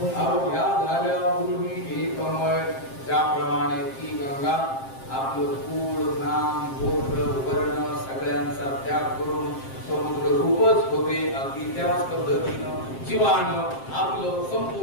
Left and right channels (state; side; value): late; right; 7.6 ms